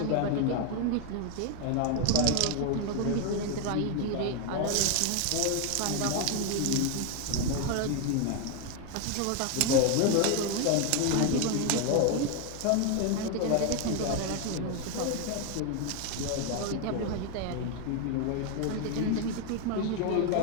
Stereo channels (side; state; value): both; different; correlation 0.01